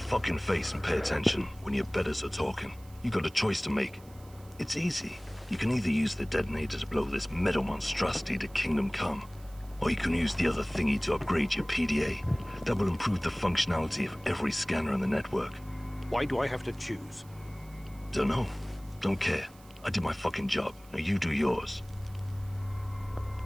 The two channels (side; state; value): right; noise; hiss, 25 dB below the sound